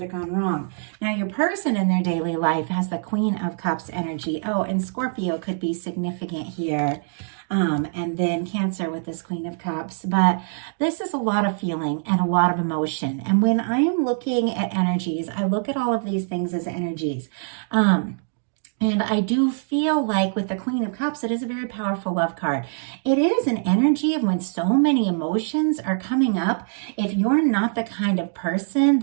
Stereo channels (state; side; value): silent; left; digital silence